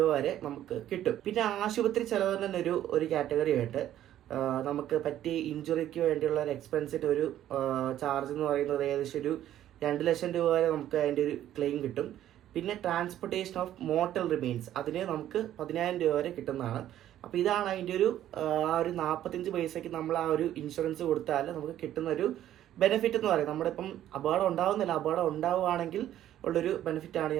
വരെ നമുക്ക് കിട്ടും. പിന്നെ ആശുപത്രി ചെലവ് തന്നെ ഒരു കാറ്റഗറി ആയിട്ട് നമുക്ക് പറ്റിയ ഇഞ്ചുറിക്ക് വേണ്ടിയുള്ള ഒരു എക്സ്പെൻസിന്റെ ഒരു ചാർജ് എന്ന് പറയുന്നത് ഏകദേശം ഒരു 2 ലക്ഷം രൂപ വരെ നമുക്ക് അതിന്റെ ഒരു ക്ലെയിം കിട്ടും. പിന്നെ ട്രാൻസ്പോർട്ടേഷൻ ഓഫ് മോർട്ടൽ റിമെയിൻസ്, അതിന് നമുക്ക് 10,000 രൂപ വരെ കിട്ടുന്നതാണ്. അപ്പോൾ ഇതാണ് അതിന്റെ ഒരു 45 പൈസയ്ക്ക് നമ്മൾ ആ ഒരു ഇൻഷുറൻസ് കൊടുത്താൽ നമുക്ക് കിട്ടുന്ന ഒരു ബെനിഫിറ്റ് എന്ന് പറയുന്നത്. നമ്മുടെ ഇപ്പം അപകടം ഉണ്ടാവുന്നില്ല, അപകടം ഉണ്ടാവുകയാണെങ്കിൽ ഉള്ളൊരു ബെനിഫിറ്റാണ്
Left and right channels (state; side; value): quieter; left; 12.1 dB